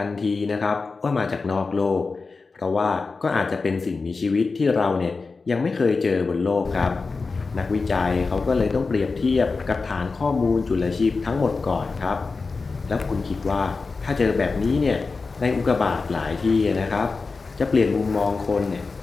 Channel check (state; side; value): quieter; right; 4.2 dB